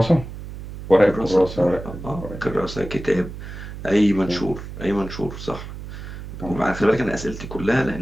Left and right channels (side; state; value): right; noise; hum, 11 dB below the sound